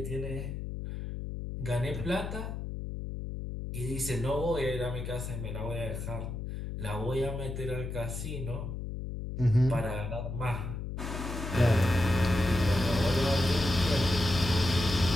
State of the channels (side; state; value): left; noise; hum, 6 dB below the sound